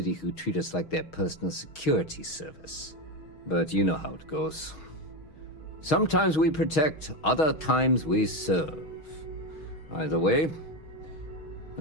who treat us like their personal security service. But you know how it goes. Sometimes we protect, other times we serve. Either way,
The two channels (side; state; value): right; late; 6.3 ms